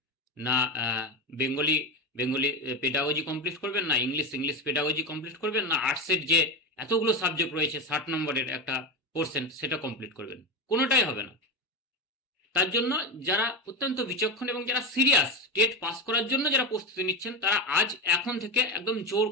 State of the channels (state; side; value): normal; both; correlation 0.18